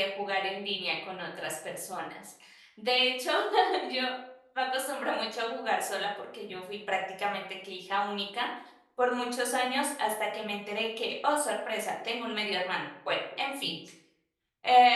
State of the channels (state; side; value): identical; both; correlation 1.00